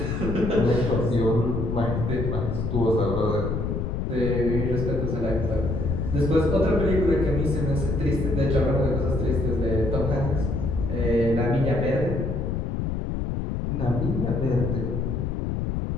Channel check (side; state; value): left; noise; rumble, 1 dB below the sound